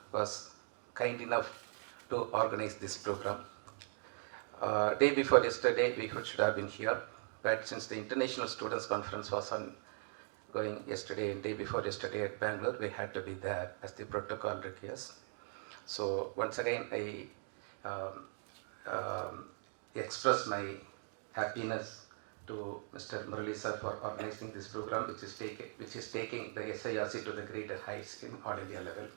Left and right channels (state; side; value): silent; left; 51 dB below the other